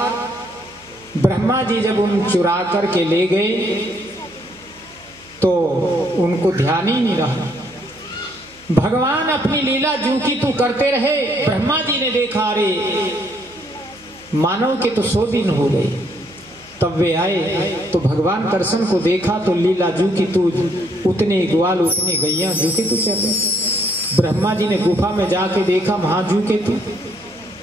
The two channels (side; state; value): right; noise; hum, 28 dB below the sound